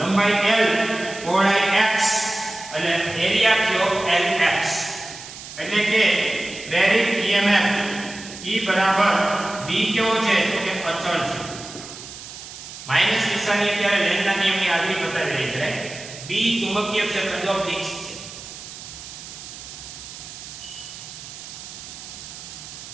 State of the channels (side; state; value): right; noise; hiss, 13 dB below the sound